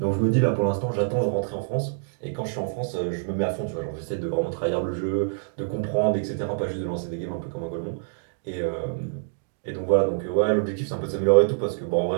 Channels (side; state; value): left; silent; digital silence